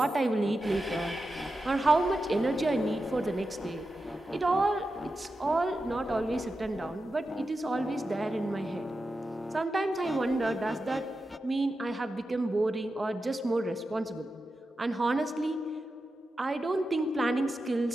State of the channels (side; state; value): both; normal; correlation 0.90